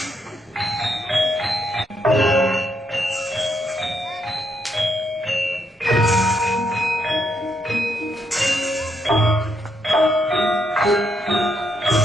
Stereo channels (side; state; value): both; normal; correlation 0.77